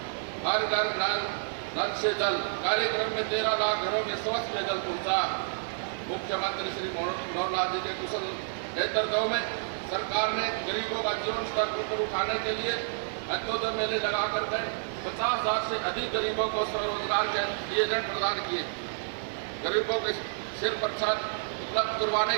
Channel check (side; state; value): left; silent; digital silence